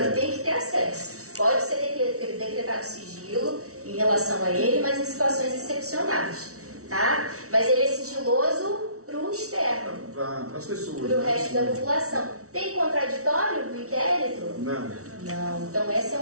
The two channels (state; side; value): late; left; 0.64 ms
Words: tem que ter acesso. Pode ser decretado sigilo em relação a ele, mas em situações excepcionais, tá? Mas ele é sigiloso para o externo. Para as pessoas. Para o resto da população. Tem contraditório no inquérito? Não. Então essa é